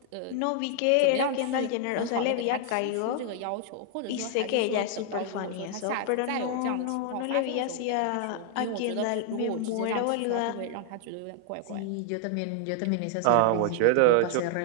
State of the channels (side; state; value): both; different; correlation 0.00